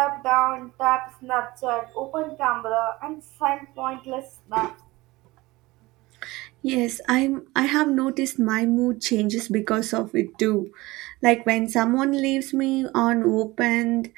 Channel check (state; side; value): quieter; left; 20.6 dB